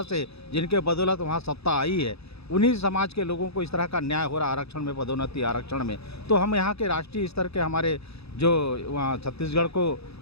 से जिनके बदौलत वहाँ सत्ता आई है, उन्हीं समाज के लोगों को इस तरह का न्याय हो रहा है आरक्षण में, पदोन्नति आरक्षण में, तो हम यहाँ के राष्ट्रीय स्तर के हमारे जो वहाँ छत्तीसगढ़ को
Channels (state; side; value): late; right; 0.79 ms